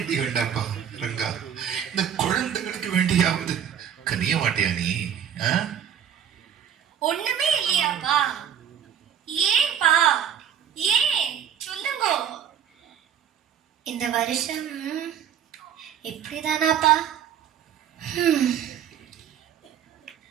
வேண்டாப்பா ரங்கா, இந்த குழந்தைகளுக்கு வேண்டியாவது கனிய மாட்டியா நீ? ஒண்ணுமே இல்லையாப்பா? ஏன்பா? ஏன் சொல்லுங்க. இந்த வருஷம் எப்படிதானாப்பா?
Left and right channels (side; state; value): left; quieter; 8.9 dB